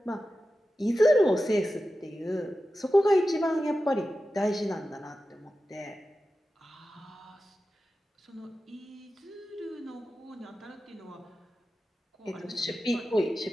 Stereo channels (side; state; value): both; normal; correlation 0.93